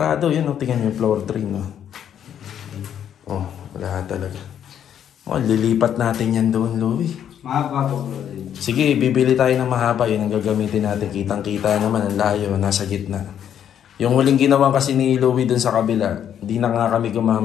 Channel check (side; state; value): right; quieter; 9.4 dB